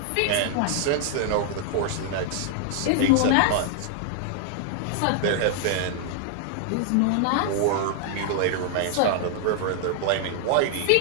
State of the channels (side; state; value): both; different; correlation 0.00